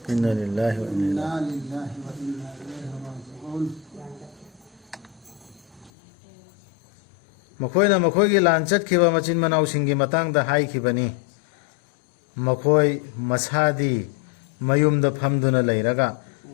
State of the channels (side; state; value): right; drops out; at 5.9 s